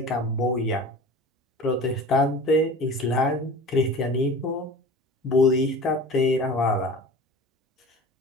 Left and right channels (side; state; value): both; normal; correlation 0.39